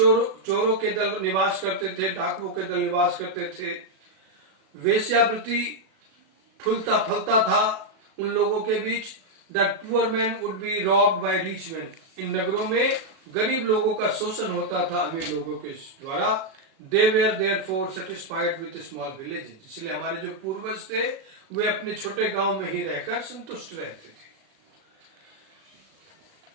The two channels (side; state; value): left; late; 37 ms